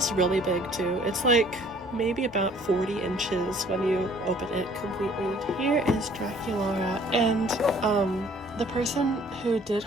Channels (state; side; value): normal; both; correlation 0.56